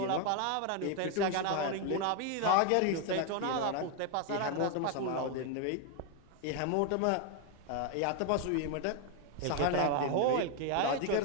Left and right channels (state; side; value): different; both; correlation 0.01